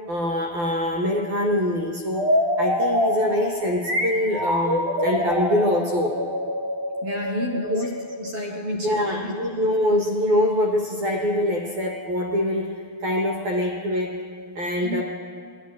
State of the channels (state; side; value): late; left; 12 ms